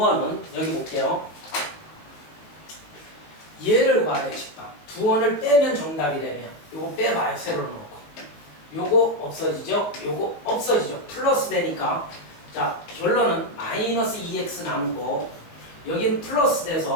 여기 볼게요. 얘를 구하래 직방. 두 원을 빼면 정답이 되면 요거 빼봐요. 세로로 놓고. 요거 없어지죠? 요거 없어지죠? 플러스 되니까 자 결론은 마이너스 2x 남고 여긴 플러스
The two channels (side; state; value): right; late; 19 ms